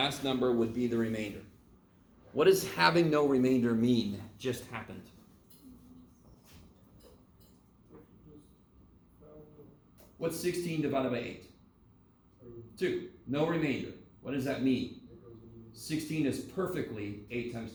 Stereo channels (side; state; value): both; identical; correlation 1.00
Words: number would be the remainder. What does having no remainder mean? Just happened. What's 16 divided by 8? 2. No remainder. What does that mean? 16 is perfectly 8 times